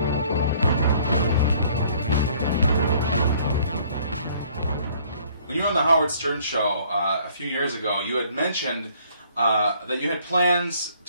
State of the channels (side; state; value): both; inverted; correlation -0.59